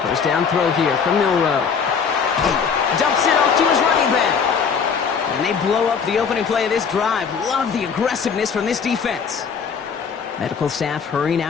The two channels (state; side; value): quieter; right; 6.3 dB